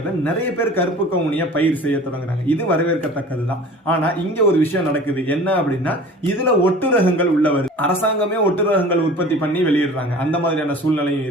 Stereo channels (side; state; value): both; normal; correlation 0.43